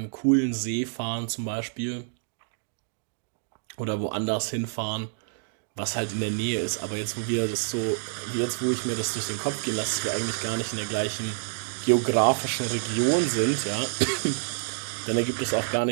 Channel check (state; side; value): silent; left; digital silence